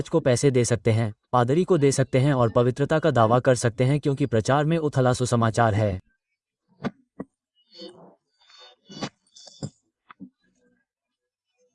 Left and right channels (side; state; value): both; identical; correlation 1.00